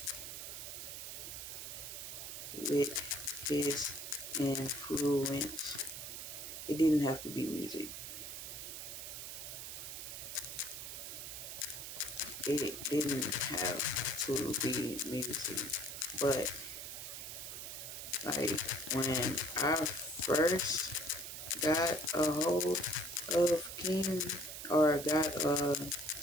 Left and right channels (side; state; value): right; noise; hiss, 8 dB below the sound